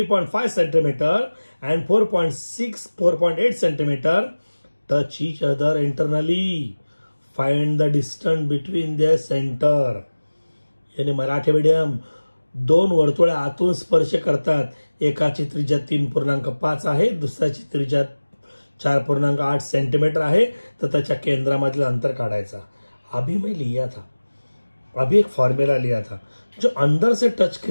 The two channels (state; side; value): inverted; both; correlation -1.00